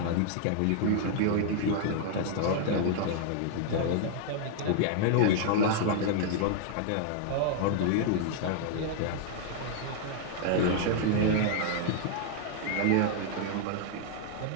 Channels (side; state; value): both; different; correlation -0.01